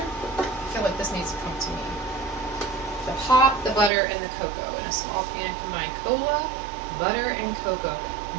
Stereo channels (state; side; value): drops out; left; at 3.9 s